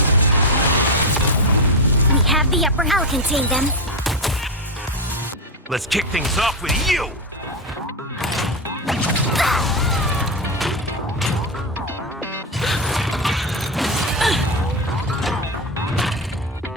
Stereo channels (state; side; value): normal; both; correlation 0.12